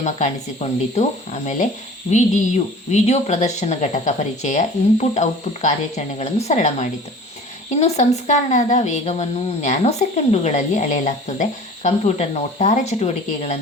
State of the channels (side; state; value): both; normal; correlation 0.43